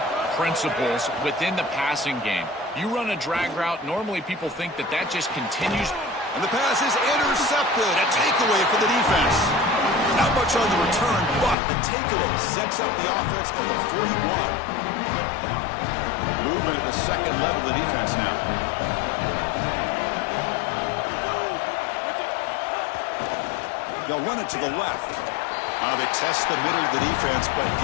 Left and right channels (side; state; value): right; drops out; at 11.6 s